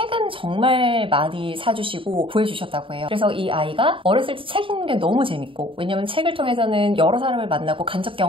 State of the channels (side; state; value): left; late; 0.25 ms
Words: 정말 많이 사주시고 구해주셨다고 해요. 그래서 이 아이가 어렸을 때 책 읽는 게 너무 재밌고 왜냐면 책을 통해서는 여러 사람을 만나고 간접